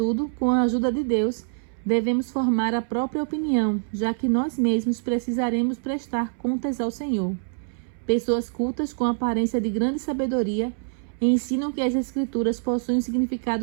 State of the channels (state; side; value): silent; left; 62 dB below the other